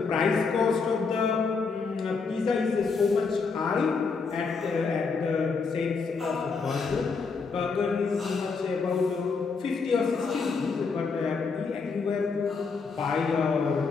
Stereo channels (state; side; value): quieter; right; 4.9 dB